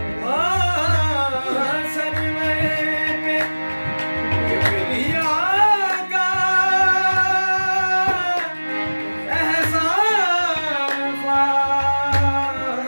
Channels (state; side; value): inverted; both; correlation -1.00